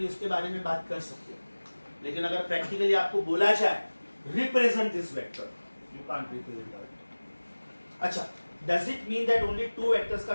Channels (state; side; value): inverted; both; correlation -1.00